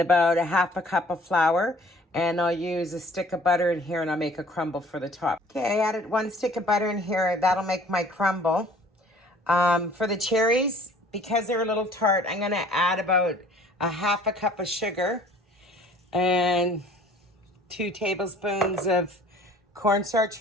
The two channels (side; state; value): both; normal; correlation 0.52